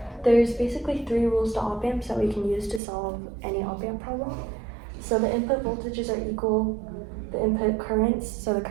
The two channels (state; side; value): drops out; left; at 2.8 s